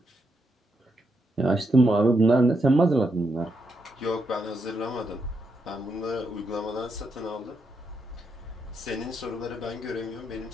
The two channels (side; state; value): both; normal; correlation 0.81